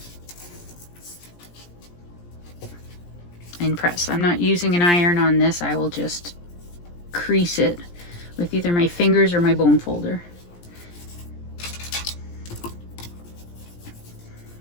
And press. I'm not using an iron on this. I will just crease it with either my fingers or my bone folder.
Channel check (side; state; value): right; late; 17 ms